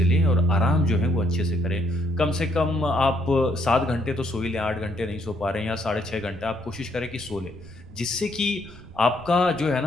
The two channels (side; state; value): right; noise; rumble, 18 dB below the sound